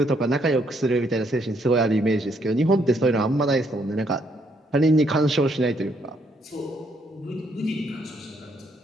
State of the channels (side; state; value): both; normal; correlation 0.72